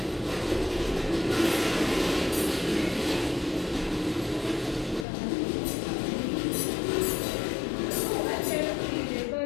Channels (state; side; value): drops out; right; at 5.1 s